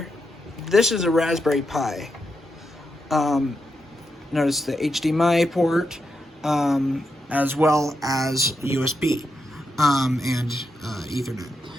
this is a Raspberry Pi. Notice the HDMI port, as well as USB and Ethernet.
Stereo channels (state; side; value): normal; both; correlation 0.84